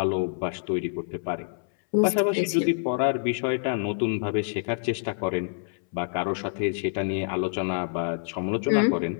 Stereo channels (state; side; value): silent; right; 60 dB below the other